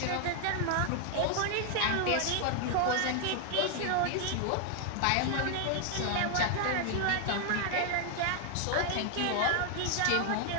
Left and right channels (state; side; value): different; both; correlation 0.00